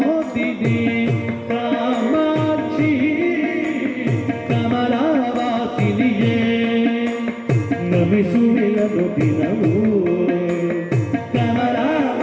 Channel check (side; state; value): both; identical; correlation 1.00